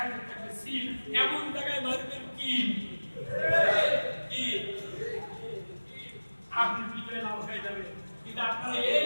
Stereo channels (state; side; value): inverted; both; correlation -1.00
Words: থাকবে সিল। এমন জায়গায় মারবেন কি আপনি বিজয় লাভ হয়ে যাবে। কিন্তু আপনারা